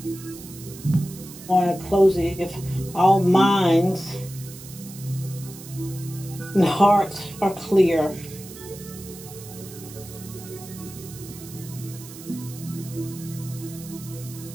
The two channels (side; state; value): right; noise; hiss, 16 dB below the sound